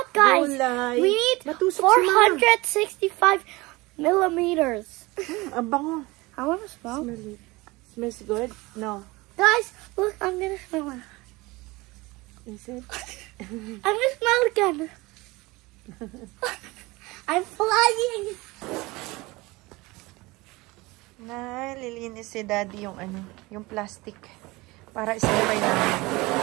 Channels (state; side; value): quieter; left; 22.3 dB